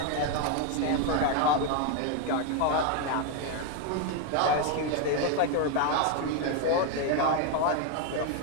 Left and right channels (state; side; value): different; both; correlation 0.01